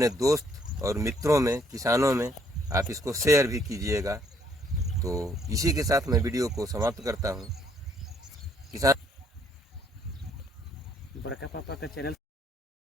दोस्त और मित्रों में, किसानों में आप इसको शेयर भी कीजिएगा। तो इसी के साथ मैं वीडियो को समाप्त करता हूँ। किसान बड़का पापा का चैनल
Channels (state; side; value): normal; both; correlation 0.66